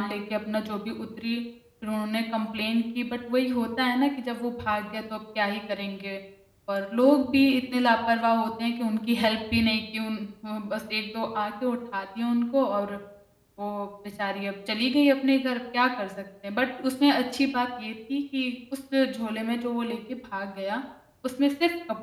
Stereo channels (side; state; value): both; identical; correlation 1.00